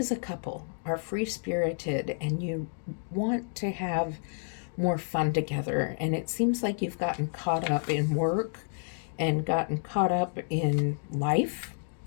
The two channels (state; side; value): silent; right; digital silence